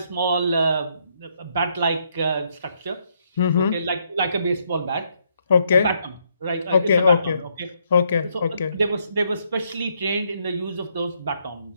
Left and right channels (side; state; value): both; inverted; correlation -0.74